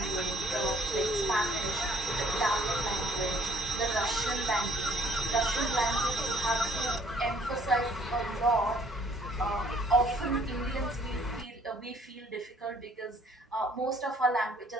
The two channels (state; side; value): normal; both; correlation 0.60